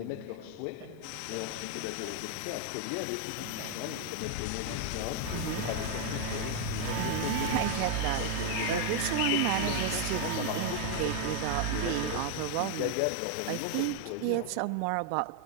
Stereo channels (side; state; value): both; different; correlation 0.01